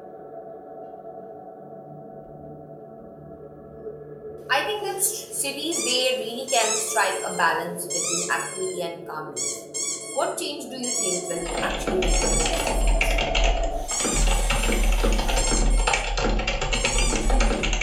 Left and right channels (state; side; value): identical; both; correlation 1.00